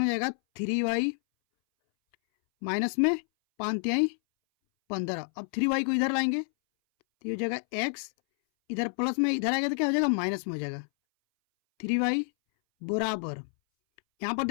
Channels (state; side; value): silent; right; 59 dB below the other